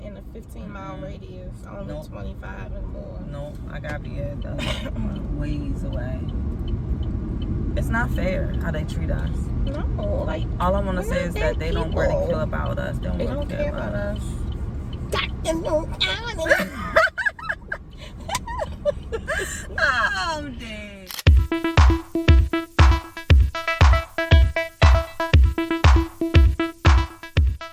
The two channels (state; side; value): identical; both; correlation 1.00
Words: in a 15-mile radius, only Nope. 25 and more. No, I gotta be at ways away. It's not fair how they treat us. No, like All I want to we're say not is bad that they don't people. really care about us. They don't care about us. Oh, Oh, damn.